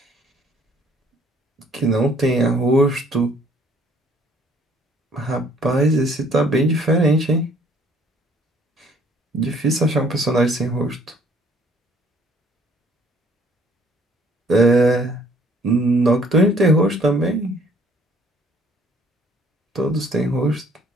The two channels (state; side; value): normal; both; correlation 0.60